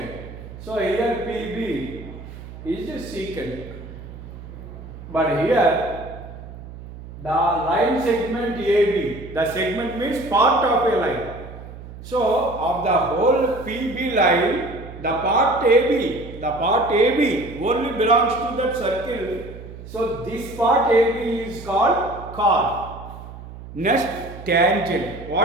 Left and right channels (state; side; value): noise; right; hum, 14 dB below the sound